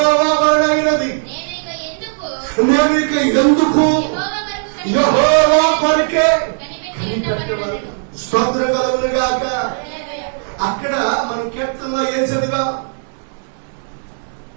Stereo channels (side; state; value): left; silent; digital silence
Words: వలన అయినది, నేను ఇక ఎందుకు యెహోవా కొరకే కనిపెట్టవలెను. స్తోత్రం కలుగును గాక. అక్కడ మనం కీర్తనలో ఏం చదివా?